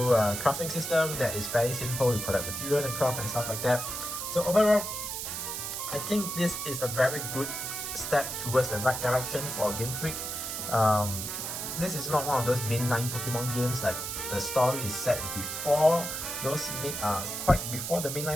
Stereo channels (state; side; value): noise; right; hiss, 4 dB below the sound